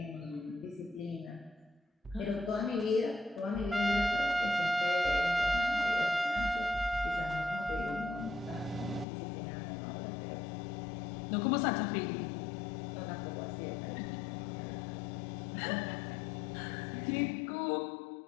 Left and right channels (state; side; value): drops out; right; at 9.1 s